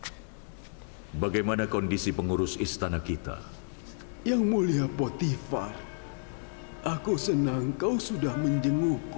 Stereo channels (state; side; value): silent; right; digital silence